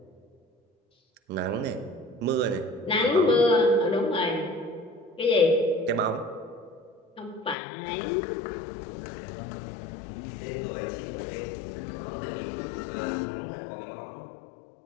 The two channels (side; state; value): right; drops out; at 7.6 s